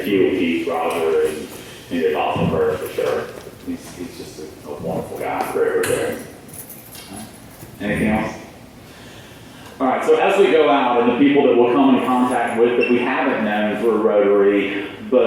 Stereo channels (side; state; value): both; identical; correlation 1.00